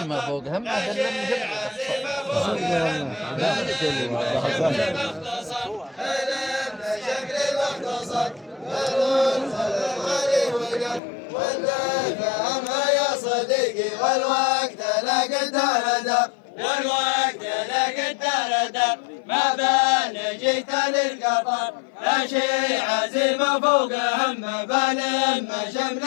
ما فوق همه بل فهمها يا صديقي والوقت لا قدر دار والوقت لا قدر دار ما بان جيت للقطر لا شيء عزيمة فوق همه بلم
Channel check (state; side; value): drops out; right; at 11.0 s